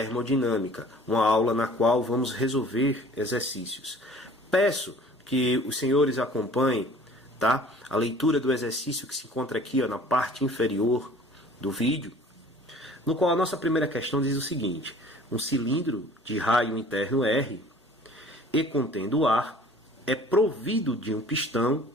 uma aula na qual vamos resolver exercícios. Peço que os senhores acompanhem, tá? A leitura do exercício que se encontra aqui, ó, na parte inferior do vídeo, no qual a nossa primeira questão diz o seguinte: um cilindro de raio interno R e contendo ar é provido de um pistão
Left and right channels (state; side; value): normal; both; correlation 0.49